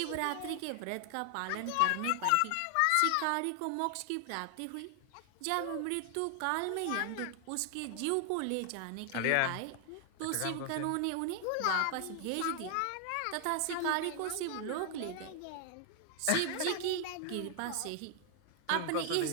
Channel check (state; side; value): different; both; correlation 0.00